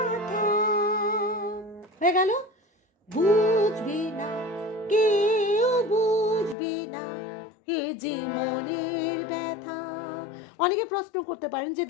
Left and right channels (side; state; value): right; drops out; at 6.6 s